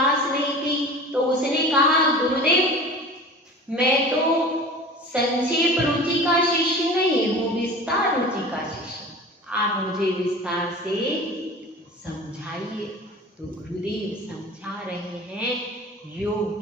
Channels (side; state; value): both; normal; correlation 0.38